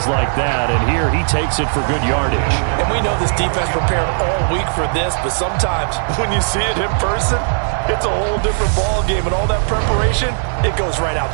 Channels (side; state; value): left; silent; digital silence